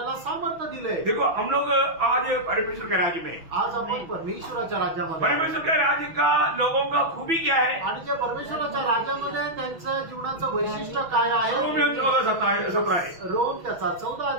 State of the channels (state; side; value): late; left; 6.1 ms